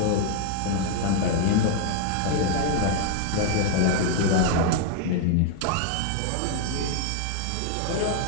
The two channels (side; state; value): both; different; correlation 0.00